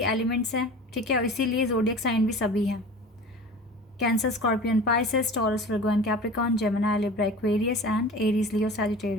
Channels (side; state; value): both; normal; correlation 0.38